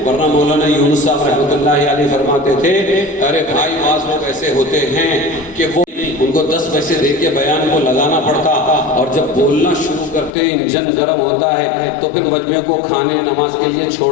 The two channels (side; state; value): right; drops out; at 10.3 s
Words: ورنہ مولانا یونس صاحب رحمۃ اللہ علیہ فرماتے تھے ارے بھائی بعض لوگ ایسے ہوتے ہیں کہ وہ ان کو 10 پیسے دے کے بیان کو لگانا پڑتا, اور جب بولنا شروع کرتے انجن گرم ہوتا ہے تو پھر مجمع کو کھانے نماز کے لیے